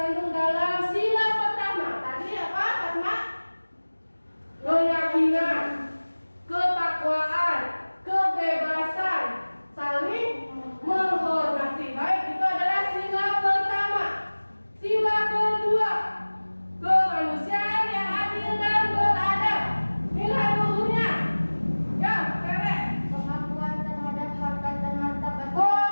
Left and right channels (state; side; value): inverted; both; correlation -1.00